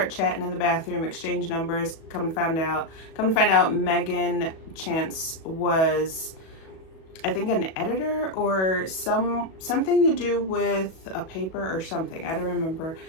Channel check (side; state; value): right; late; 37 ms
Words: chatting in the bathroom, exchange numbers. Come to find out, Megan Chance was, I think, an editor or something to do with a paper or something. I don't remember,